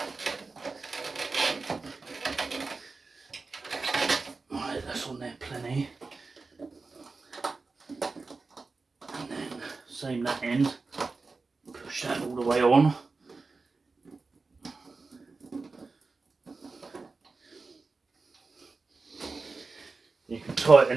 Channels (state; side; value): quieter; left; 4.0 dB